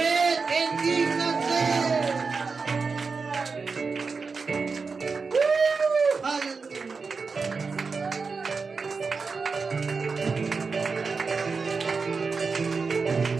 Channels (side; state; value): left; quieter; 4.7 dB